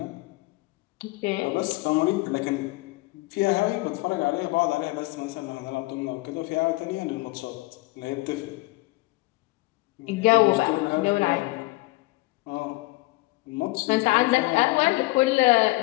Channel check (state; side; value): quieter; right; 21.9 dB